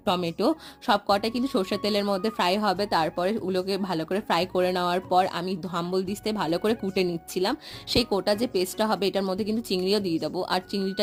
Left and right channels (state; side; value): identical; both; correlation 1.00